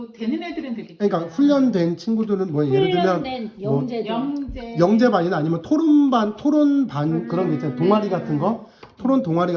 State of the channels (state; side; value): identical; both; correlation 1.00